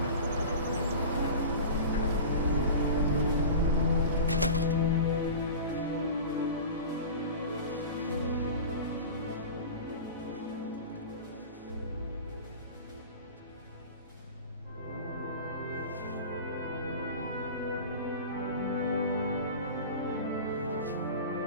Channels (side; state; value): both; inverted; correlation -0.33